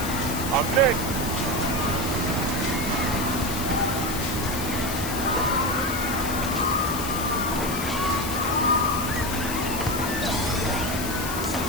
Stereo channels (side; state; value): left; noise; hiss, 6 dB below the sound